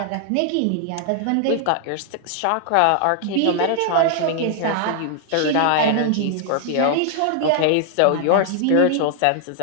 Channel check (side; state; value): both; different; correlation -0.01